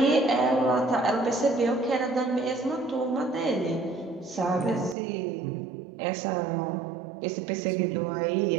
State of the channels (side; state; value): left; drops out; at 5.0 s